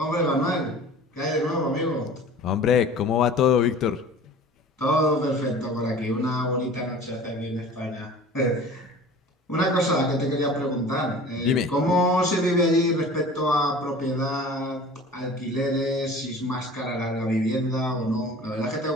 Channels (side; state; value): both; normal; correlation 0.42